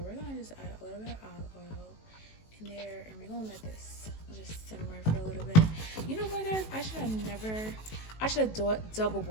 we're gonna just add a little bit of olive oil in there, and we're gonna let this just simmer for a little bit. You know what, guys? I should have double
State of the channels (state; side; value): late; right; 18 ms